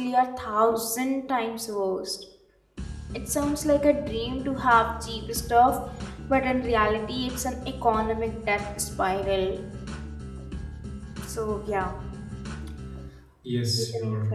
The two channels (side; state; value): both; identical; correlation 1.00